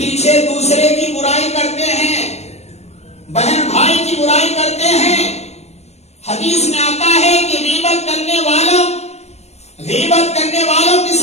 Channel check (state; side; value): late; right; 0.31 ms